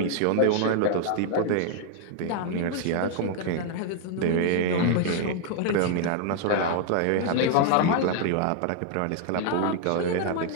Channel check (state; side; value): different; both; correlation 0.00